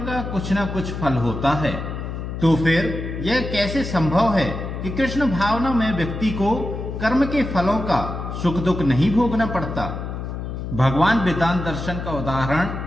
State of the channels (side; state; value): left; noise; hum, 6 dB below the sound